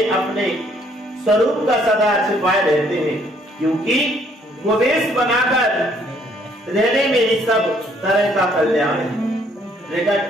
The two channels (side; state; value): both; normal; correlation 0.65